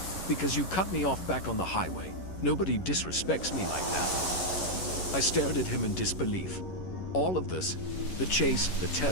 "Because you cut me off back on the highway. Nobody disrespects me like that." I stared at him in disbelief. All of this, the chase, the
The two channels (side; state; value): right; late; 11 ms